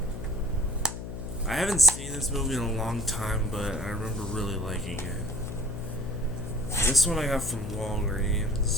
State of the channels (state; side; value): noise; left; hum, 8 dB below the sound